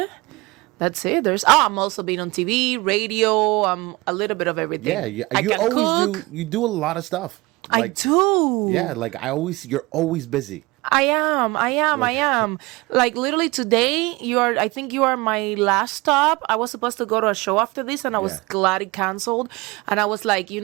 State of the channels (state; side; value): quieter; left; 22.8 dB